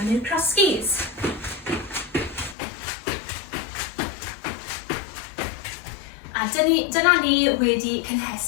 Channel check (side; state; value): right; drops out; at 2.6 s